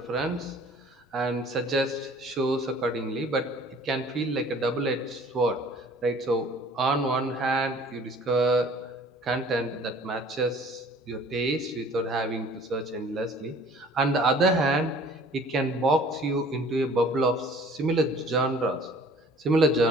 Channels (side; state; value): both; normal; correlation 0.51